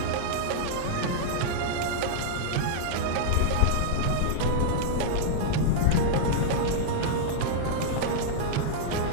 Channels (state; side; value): different; both; correlation -0.02